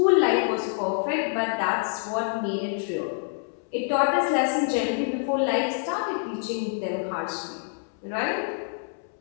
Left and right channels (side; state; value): right; silent; 61 dB below the other